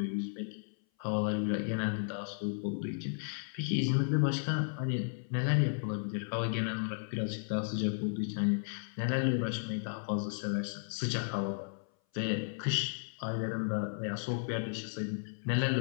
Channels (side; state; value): right; silent; 55 dB below the other